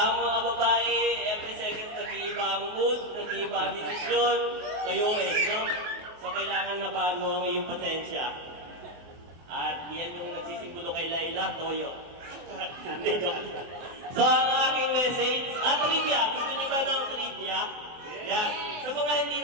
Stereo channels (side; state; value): left; late; 24 ms